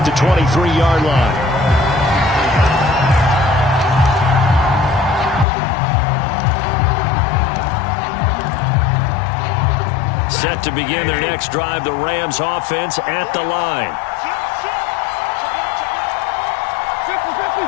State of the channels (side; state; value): right; drops out; at 5.5 s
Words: to 23-yard line. Set to begin their next drive, the Rams offense at the line.